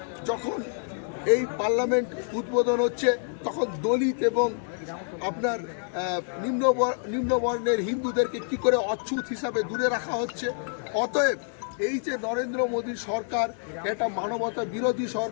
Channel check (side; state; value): right; silent; 60 dB below the other